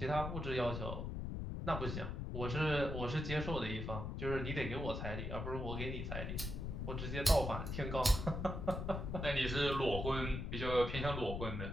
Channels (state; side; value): noise; left; rumble, 4 dB below the sound